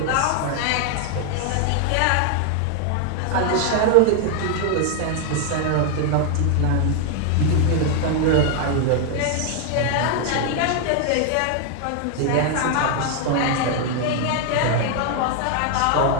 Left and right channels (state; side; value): different; both; correlation 0.00